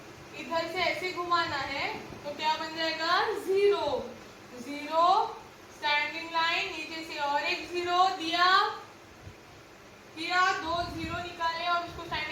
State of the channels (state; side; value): identical; both; correlation 1.00